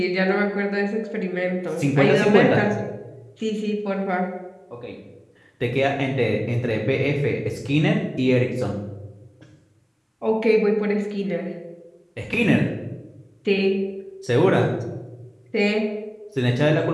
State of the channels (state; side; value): identical; both; correlation 1.00